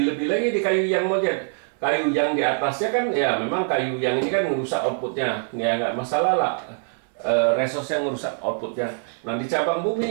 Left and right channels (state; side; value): silent; left; digital silence